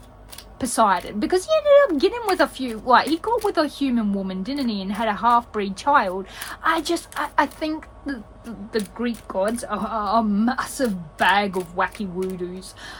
Poseidon, because he ended up getting with he got with a human woman, didn't he, and had a half-breed child. I think the Greek gods are a massive bag of wacky woodoos.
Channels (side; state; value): both; identical; correlation 1.00